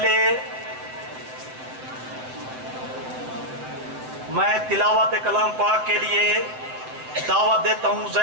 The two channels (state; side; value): late; left; 7.6 ms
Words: मैं तिलावत कलाम पाक के लिए दावत देता हूं